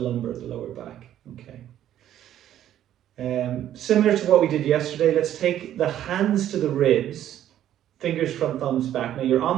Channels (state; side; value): quieter; left; 11.5 dB